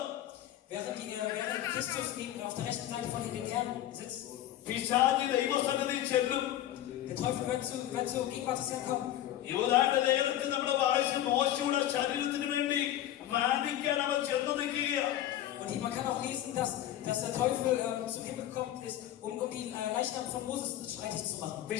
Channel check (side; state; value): right; quieter; 12.7 dB